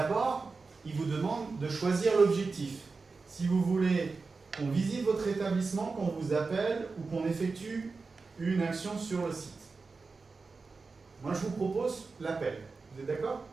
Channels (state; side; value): quieter; left; 4.2 dB